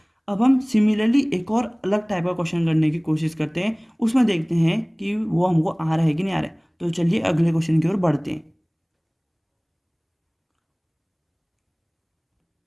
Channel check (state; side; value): identical; both; correlation 1.00